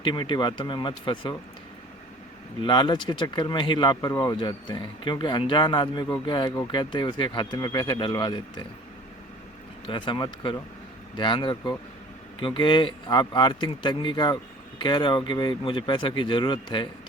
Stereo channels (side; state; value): both; normal; correlation 0.48